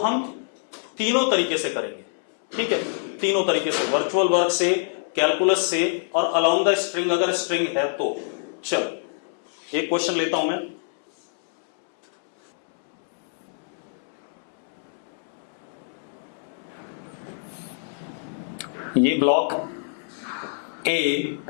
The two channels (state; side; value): silent; right; 61 dB below the other